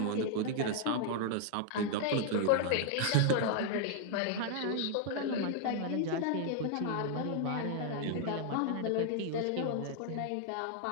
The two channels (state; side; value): different; both; correlation 0.00